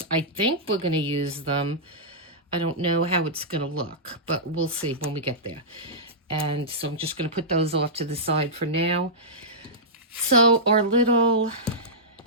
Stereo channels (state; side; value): normal; both; correlation -0.14